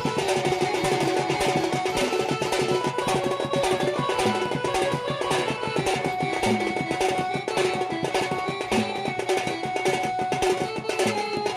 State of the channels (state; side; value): identical; both; correlation 1.00